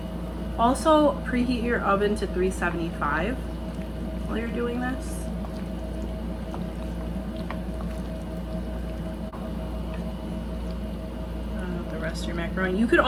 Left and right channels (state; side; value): identical; both; correlation 1.00